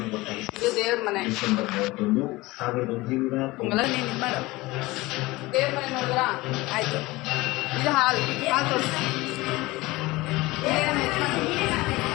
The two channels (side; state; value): right; quieter; 20.6 dB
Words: ಒತ್ತಾಯಿಸಿದೆ. ದೇವ್ರ ಮನೆ ಡಿಸೆಂಬರ್ 31, 1990 ದೇವ್ರ ಮನೆ ನೋಡಿದ್ರ ಆಯ್ತು. ಇದು ಹಾಲ್ ತೋರಿಸಿ.